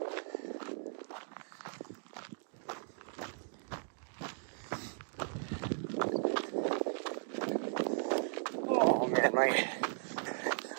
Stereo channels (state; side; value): silent; left; digital silence